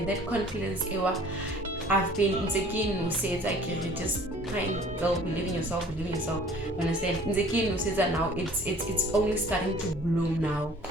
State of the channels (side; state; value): both; normal; correlation 0.50